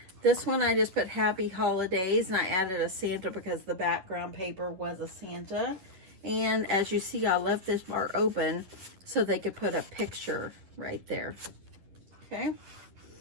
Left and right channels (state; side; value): late; left; 11 ms